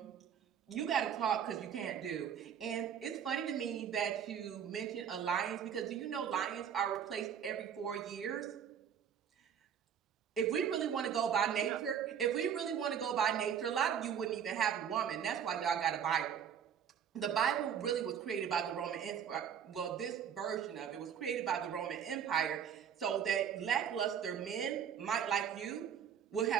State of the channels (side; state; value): left; quieter; 8.3 dB